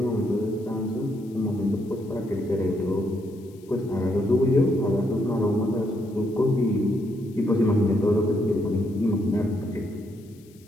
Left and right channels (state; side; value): noise; left; hiss, 29 dB below the sound